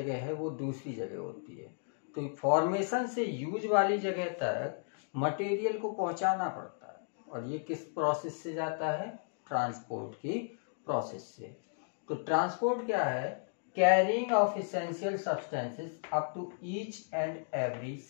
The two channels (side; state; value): right; silent; digital silence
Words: है वो दूसरी जगह होती है। तो फॉर्मेशन से यूज वाली जगह तक मटेरियल को पहुंचाना पड़ता है और ये किस प्रोसेस से जाता है? ट्रांसपोर्ट की प्रोसेस से। तो ट्रांसपोर्ट क्या है? Carrying of essential substances up to each and every